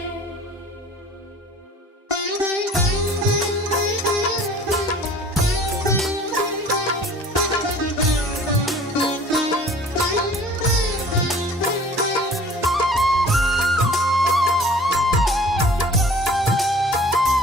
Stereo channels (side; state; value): both; normal; correlation 0.49